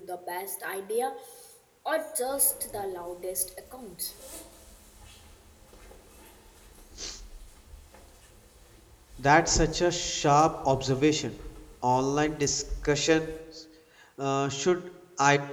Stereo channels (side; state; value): both; identical; correlation 1.00